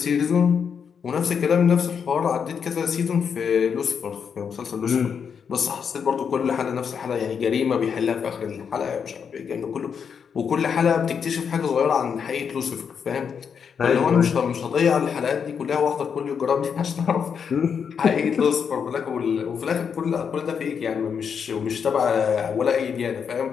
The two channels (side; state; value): right; quieter; 6.8 dB